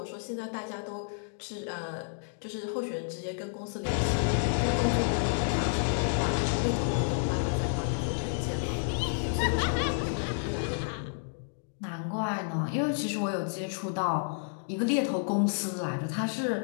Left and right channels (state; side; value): silent; right; digital silence